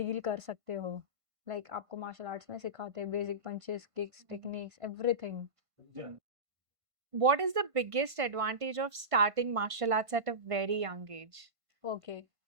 कर सकते हो। लाइक आपको मार्शल आर्ट्स में सिखाते हैं basic punches, kicks, techniques, everything. What is the biggest advantage of starting martial arts at a very young age? Okay.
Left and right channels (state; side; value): late; left; 1.5 ms